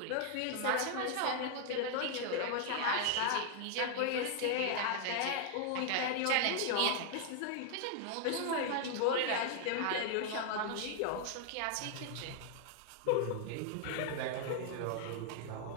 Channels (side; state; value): both; different; correlation 0.00